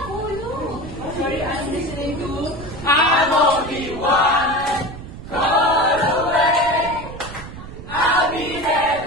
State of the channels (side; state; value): right; noise; rumble, 12 dB below the sound